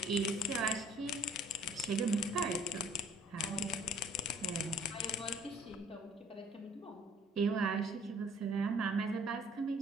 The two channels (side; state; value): both; normal; correlation 0.56